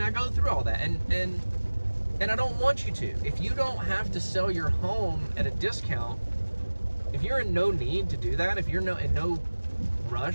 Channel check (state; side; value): inverted; both; correlation -1.00